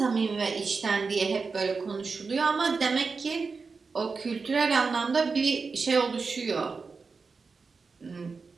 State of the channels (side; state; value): left; quieter; 4.7 dB